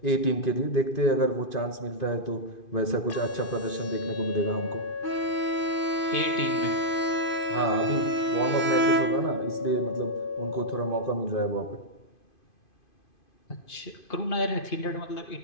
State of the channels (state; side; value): late; right; 2.5 ms